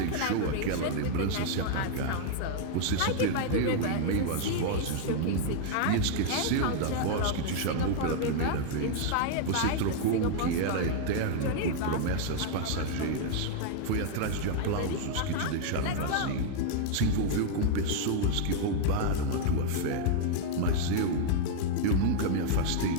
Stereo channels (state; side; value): different; both; correlation -0.01